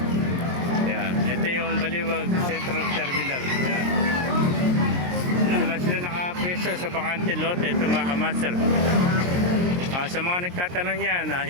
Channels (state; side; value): late; left; 23 ms